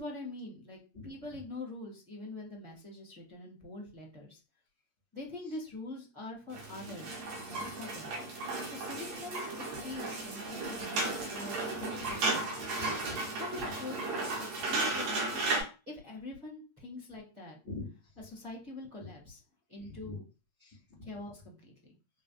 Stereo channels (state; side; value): late; left; 8.5 ms